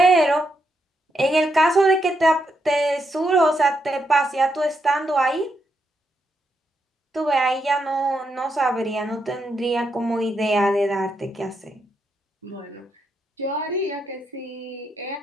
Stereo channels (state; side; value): normal; both; correlation 0.81